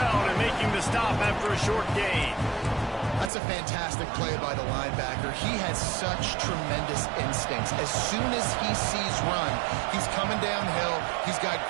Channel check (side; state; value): left; drops out; at 3.3 s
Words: and making the stop after a short gain. That's a fantastic play by the linebacker. He has such tremendous instincts. As soon as he sees run, he's coming downhill. He's got